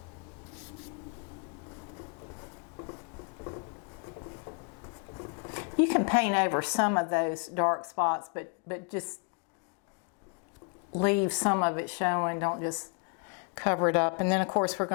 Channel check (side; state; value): right; quieter; 36.7 dB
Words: You can paint over some of those dark spots, but just leave some of it showing. Don't just cover it up. And then of course we're